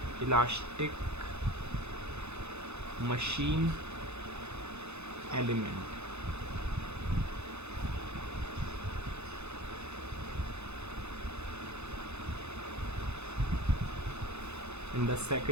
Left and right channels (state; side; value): late; left; 0.81 ms